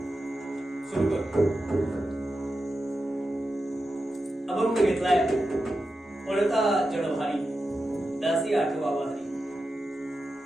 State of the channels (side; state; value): both; normal; correlation 0.90